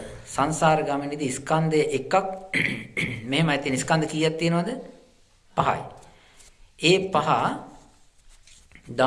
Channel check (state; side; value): identical; both; correlation 1.00